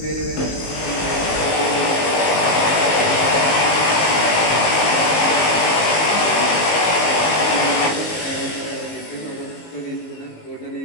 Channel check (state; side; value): late; right; 19 ms